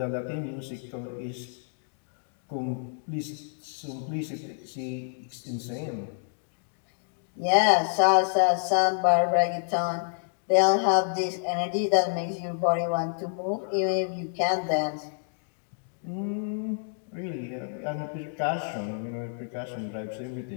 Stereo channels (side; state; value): right; silent; digital silence